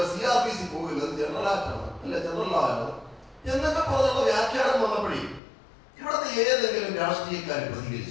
CRPC പോകില്ല, അത് ജനറൽ ആക്ട് ആണ്, അല്ലെ ജനറൽ ലോ ആണ് എന്നൊക്കെ പറഞ്ഞുള്ള വ്യാഖ്യാനം വന്നപ്പോഴേ ഇവിടുത്തെ ഏതെങ്കിലും രാഷ്ട്രീയക്കാർ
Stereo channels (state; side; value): drops out; right; at 5.4 s